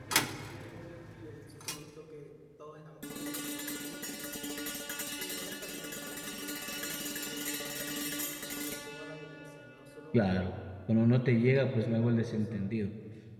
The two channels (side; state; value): both; identical; correlation 1.00